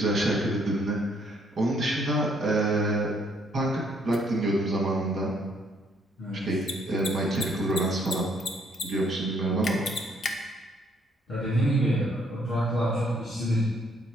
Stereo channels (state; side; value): normal; both; correlation 0.67